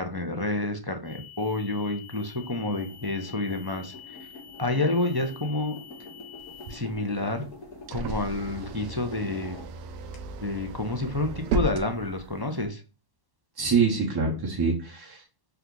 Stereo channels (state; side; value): late; left; 1.1 ms